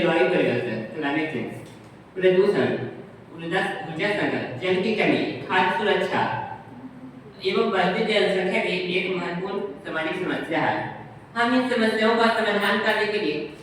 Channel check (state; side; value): identical; both; correlation 1.00